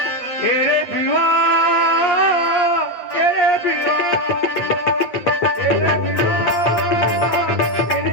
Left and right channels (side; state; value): right; late; 8.6 ms